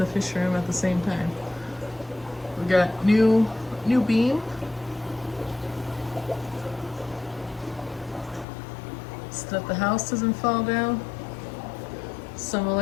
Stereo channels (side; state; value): right; drops out; at 8.5 s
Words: fish room at the same time. We got new beam. So that the house doesn't fall down. Some